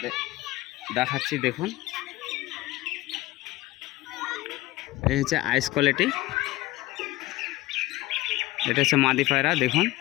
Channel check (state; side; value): quieter; right; 18.3 dB